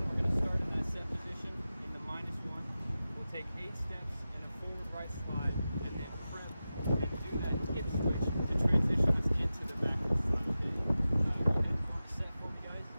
we're going to start in that set position in the -1. We'll take 8 steps in a forward right slide, and then prep and do that hip switch to transition us into the backward slide. Okay? You can set for me, guys.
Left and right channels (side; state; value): both; inverted; correlation -0.94